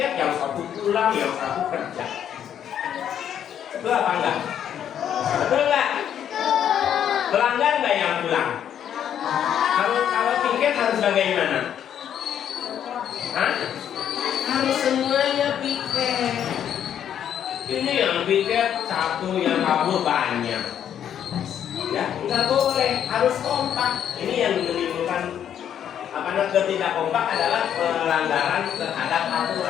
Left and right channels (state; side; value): quieter; right; 9.5 dB